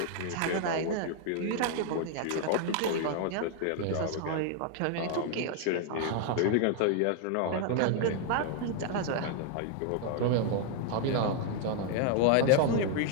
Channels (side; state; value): both; different; correlation 0.00